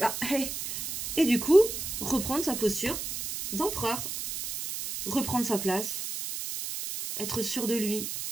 Ah, hey. Et du coup, reprendre sa posture d'empereur. Reprendre sa place. Être sûr de lui.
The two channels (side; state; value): right; noise; hiss, 5 dB below the sound